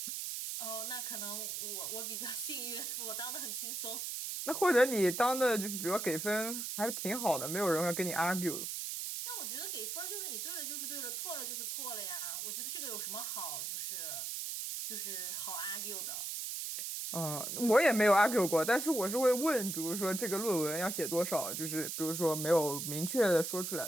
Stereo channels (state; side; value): noise; right; hiss, 4 dB below the sound